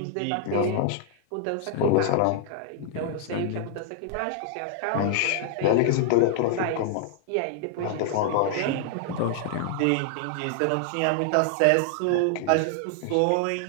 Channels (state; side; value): different; both; correlation 0.00